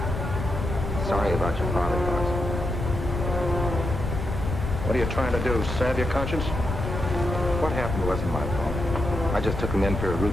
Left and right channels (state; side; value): noise; left; rumble, 4 dB below the sound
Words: sorry about your father, Fox. What are you trying to do, salve your conscience? What happened wasn't my fault. I just took him in for a